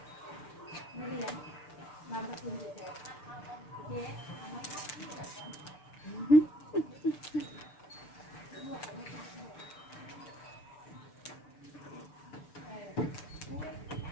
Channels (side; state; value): right; late; 6.8 ms